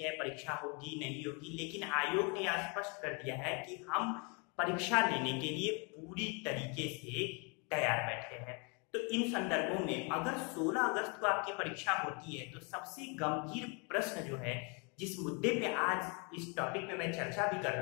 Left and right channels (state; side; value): quieter; right; 33.4 dB